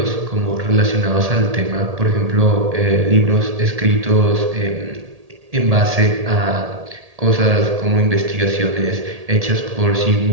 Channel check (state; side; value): late; left; 1.8 ms